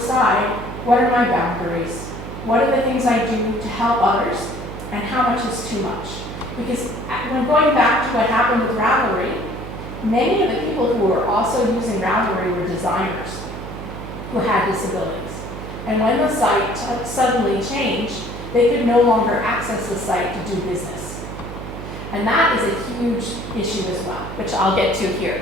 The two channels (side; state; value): right; noise; hum, 10 dB below the sound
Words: what are my boundaries? What are the things I do to help others? And how much is too much? Because when going back to what happened with Ravelry, many of the people who were also using Ravelry were designers who had disabilities. And when the site suddenly changed, they could no longer access the site to do business. And that is a huge issue as well, which I'll get to